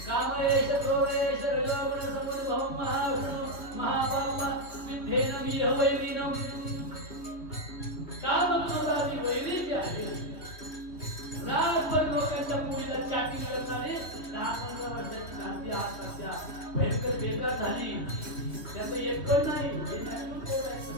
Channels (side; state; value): right; late; 3.2 ms